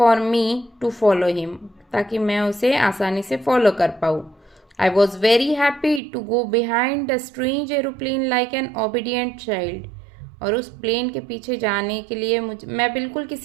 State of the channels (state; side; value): drops out; left; at 6.0 s